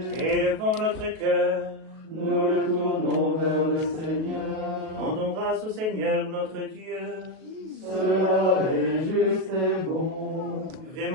Élevons notre cœur. nous le tournons vers le Seigneur. Rendons grâce au Seigneur notre Dieu. Cela est juste et bon.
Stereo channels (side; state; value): left; late; 37 ms